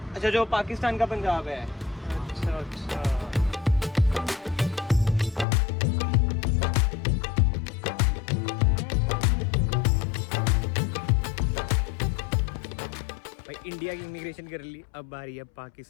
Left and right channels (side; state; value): right; drops out; at 5.5 s